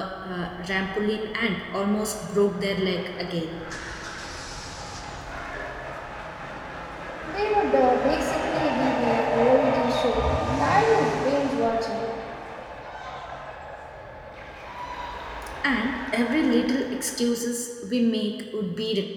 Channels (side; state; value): both; identical; correlation 1.00